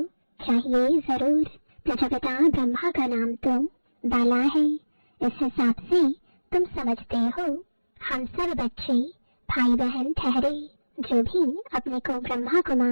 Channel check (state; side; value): inverted; both; correlation -1.00